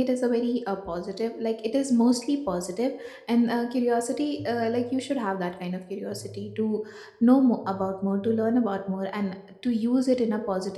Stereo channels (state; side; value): identical; both; correlation 1.00